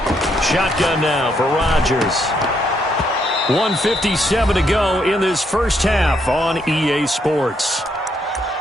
Shotgun now for Rodgers. 1:57 to go in this first half on EA Sports.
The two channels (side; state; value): both; normal; correlation 0.75